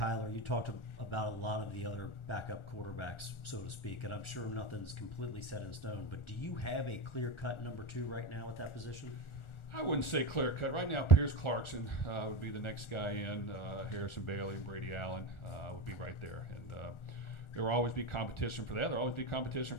you talked about a lot of the other backup quarterbacks, so to speak, and I'm sure nothing's completely set in stone, but do you have a clear-cut number 2 right now at that position? I wouldn't say clear cut. Right now, Pierce Clarkson would be the next guy in. Harrison Bailey and Brady Allen would be right there. And there will always be competition for that. There will always be competition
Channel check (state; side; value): late; right; 1.4 ms